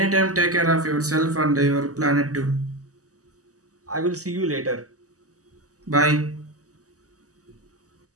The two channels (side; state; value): left; late; 0.66 ms